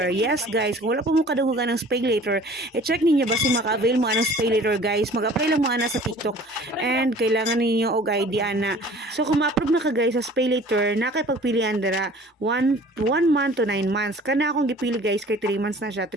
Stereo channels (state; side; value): normal; both; correlation 0.48